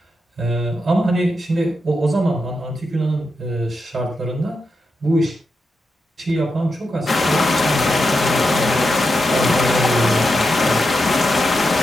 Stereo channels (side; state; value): both; normal; correlation 0.86